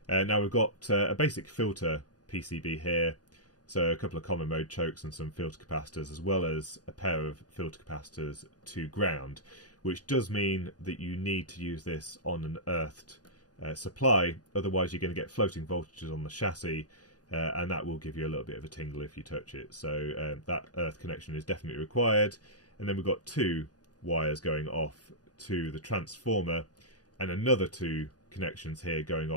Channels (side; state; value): right; late; 0.68 ms